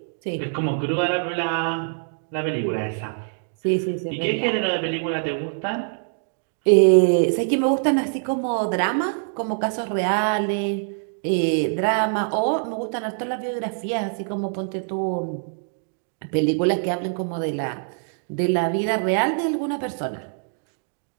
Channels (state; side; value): silent; left; digital silence